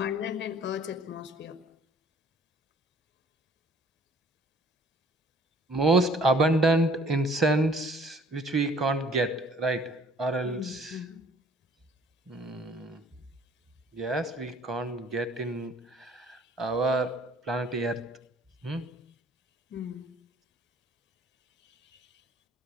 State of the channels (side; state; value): both; normal; correlation 0.56